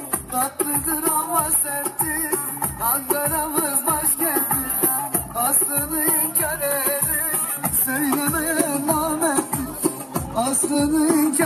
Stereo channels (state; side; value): identical; both; correlation 1.00